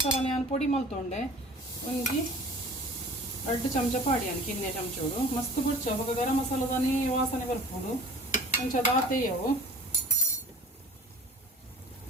ನಾನು ಪೊಡಿ ಮಲ್ತೊಂಡೆ ಒಂಜಿ 2 ಚಮಚ ಪಾಡಿಯಾನು ಕಿನ್ನೆ ಚಮಚೋಡು ಮಸ್ತ್ ಬುಡ್ಚ ಬೊಕ್ಕ ಗರಂ ಮಸಾಲದನೇ ವಾಸನೆ ಬರ್ಪುಡು ಒಂಚ ದಾತೆಯವು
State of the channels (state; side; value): normal; both; correlation 0.43